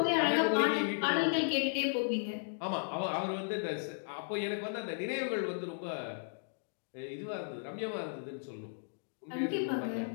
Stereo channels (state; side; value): silent; right; digital silence